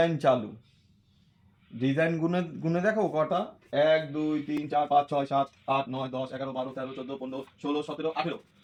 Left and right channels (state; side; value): identical; both; correlation 1.00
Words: চালু, ডিজাইন গুনে গুনে দেখো কটা, 1 2 3 4 5 6 7 8 9 10 11 12 13 14 15 16 17 18